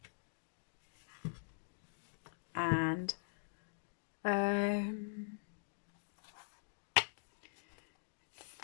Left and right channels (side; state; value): right; silent; digital silence